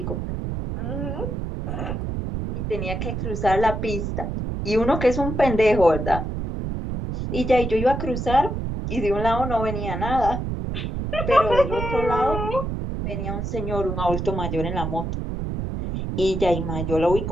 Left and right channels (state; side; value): noise; right; rumble, 3 dB below the sound